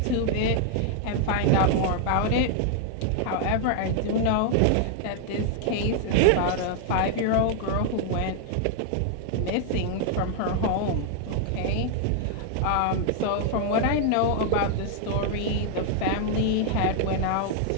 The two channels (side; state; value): both; different; correlation 0.00